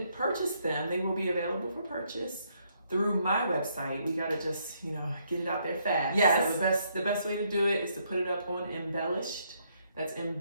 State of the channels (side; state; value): both; inverted; correlation -0.72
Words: purchase them. They will be available for purchase through my website. We gotta just, get it out there fast. Yes. So the best way to do it is to put it up on Embellished. That's